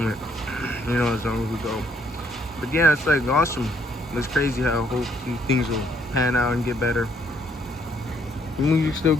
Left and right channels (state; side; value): normal; both; correlation 0.68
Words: you know, as long as we go. But yeah, it's like awesome. It's crazy how things will pan out and get better. The music's still